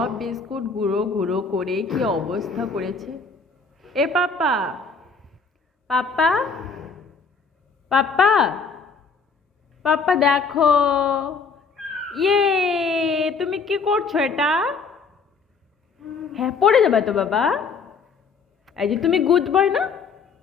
বিস্কুট গুঁড়ো গুঁড়ো করে কি অবস্থা করেছে। এ পাপ্পা, পাপ্পা, পাপ্পা, পাপ্পা দেখো। ইয়ে, তুমি কি করছো এটা? হ্যাঁ, পড়ে যাবে তো বাবা। এই যে তুমি গুড বয় না?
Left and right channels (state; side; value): quieter; right; 5.0 dB